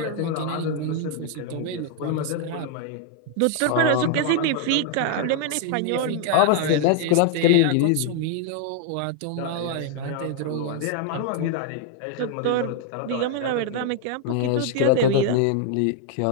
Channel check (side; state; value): both; different; correlation 0.00